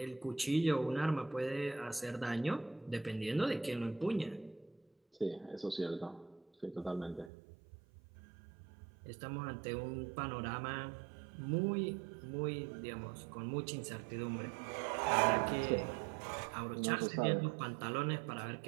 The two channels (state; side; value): drops out; left; at 7.3 s